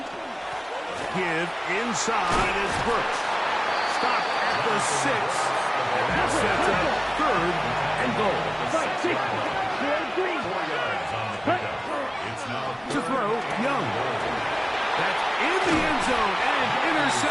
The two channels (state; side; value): identical; both; correlation 1.00